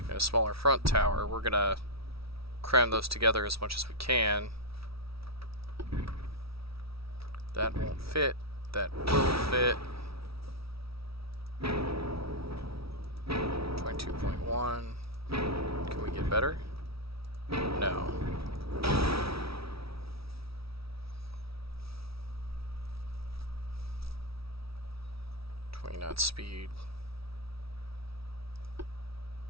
a smaller front tower. We're gonna cram those together as much as we can. That won't fit. That will fit. 22.1. Can we get better? No. 20 knot speed.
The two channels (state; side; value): late; left; 0.76 ms